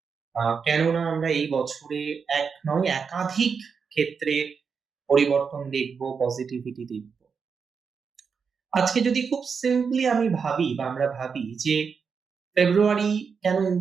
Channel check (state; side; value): quieter; left; 5.9 dB